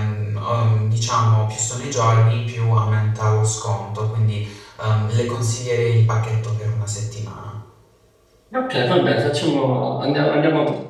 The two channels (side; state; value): both; identical; correlation 1.00